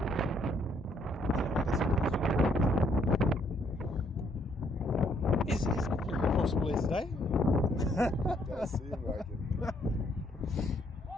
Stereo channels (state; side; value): normal; both; correlation 0.69